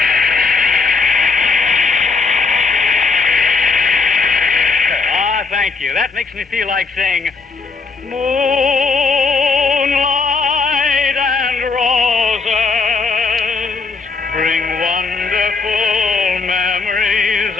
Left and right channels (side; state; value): right; quieter; 4.4 dB